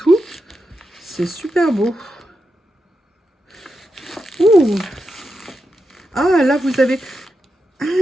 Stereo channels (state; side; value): normal; both; correlation 0.87